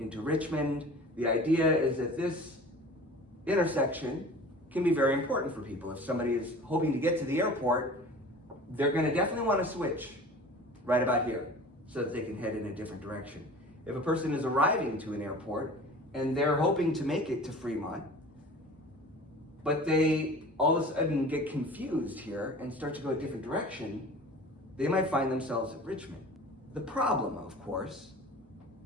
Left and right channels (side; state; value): both; normal; correlation 0.41